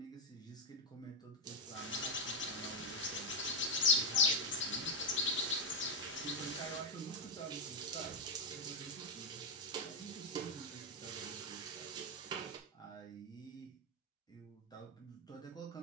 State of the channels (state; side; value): normal; both; correlation 0.02